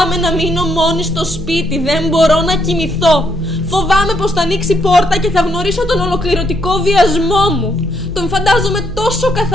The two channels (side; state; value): both; normal; correlation 0.74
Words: να μείνω μόνη στο σπίτι, δεν μπορώ να κοιμηθώ. Φοβάμαι πως θα ανοίξει πόρτα και θα γνωρίσω τον ολοκληρωτικό βιασμό μου. Τον φαντάζομαι τόσο